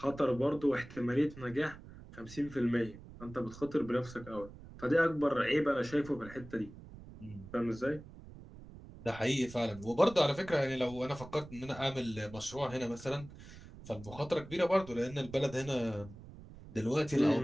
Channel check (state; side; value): noise; right; rumble, 16 dB below the sound